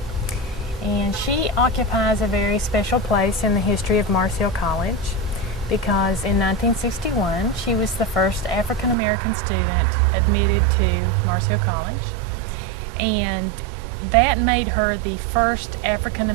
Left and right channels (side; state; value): left; drops out; at 9.0 s